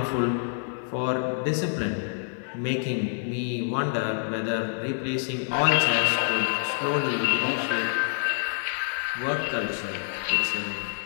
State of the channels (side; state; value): right; silent; digital silence